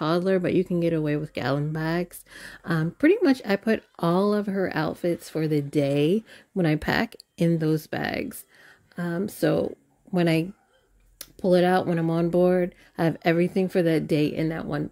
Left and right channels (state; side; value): identical; both; correlation 1.00